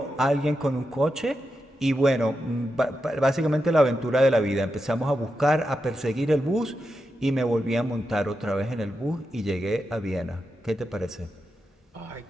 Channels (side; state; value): both; normal; correlation 0.87